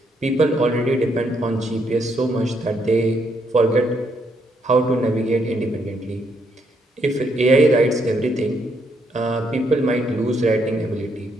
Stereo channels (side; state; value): both; normal; correlation 0.75